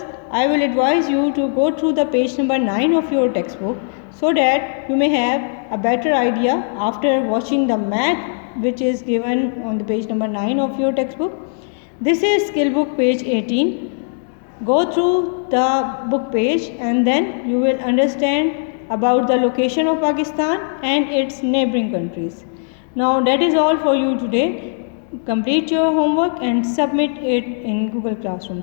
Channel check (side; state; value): right; silent; digital silence